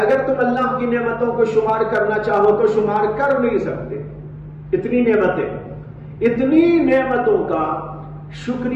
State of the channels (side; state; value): both; identical; correlation 1.00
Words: تم اللہ کی نعمتوں کو شمار کرنا چاہو تو شمار کر نہیں سکتے، اتنی نعمتیں۔ اتنی نعمتوں کا